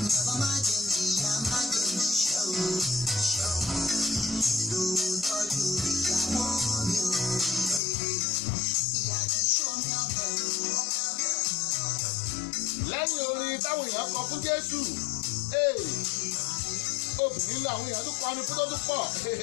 Lẹ́yìn orin táwọn èèyàn kọ fún Jésù obìnrin làwọn èèyàn tún kọrin fún tó tún pọ̀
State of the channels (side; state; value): right; drops out; at 7.8 s